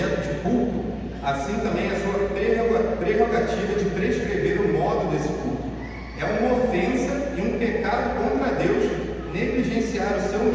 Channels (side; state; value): both; identical; correlation 1.00